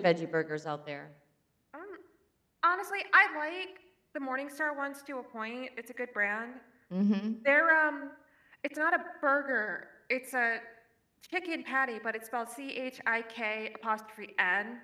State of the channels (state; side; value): identical; both; correlation 1.00